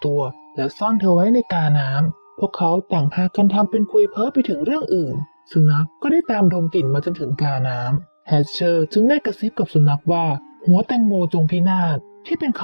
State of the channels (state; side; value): inverted; both; correlation -1.00